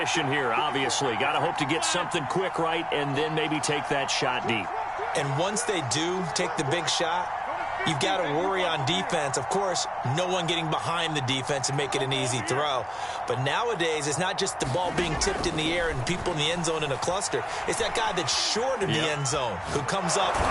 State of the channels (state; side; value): identical; both; correlation 1.00